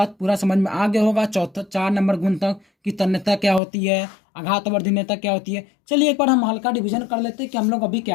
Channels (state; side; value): drops out; right; at 3.6 s